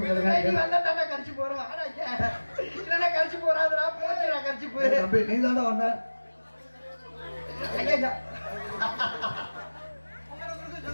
வந்தா கரிச்சு போறோம். வாடா இங்க. இல்லைன்னா கரிச்சு போறாதுடா. போச்சுடா கரிச்சு போயிரு. தம்பி நீ தாண்டா வந்த. ஐயா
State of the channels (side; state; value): both; inverted; correlation -1.00